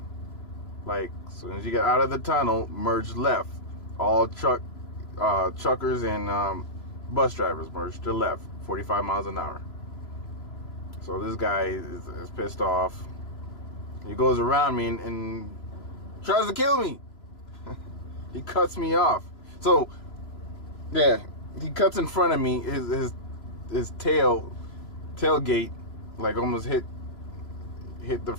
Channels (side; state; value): right; late; 3.0 ms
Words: Like, as soon as you get out of the tunnel, merge left. All truckers and bus drivers merge to left, 45 miles an hour. So this guy is pissed off. He goes around me and tries to kill me. He cuts me off. So, yeah, he cuts in front of me. His tailgate, like, almost hit the